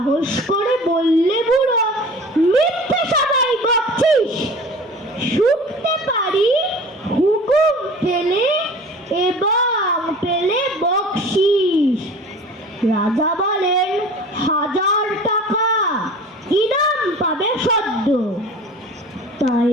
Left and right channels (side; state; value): both; normal; correlation 0.42